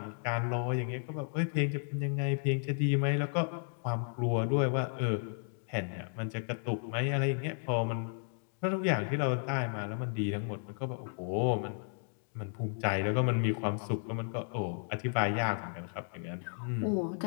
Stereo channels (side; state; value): right; silent; digital silence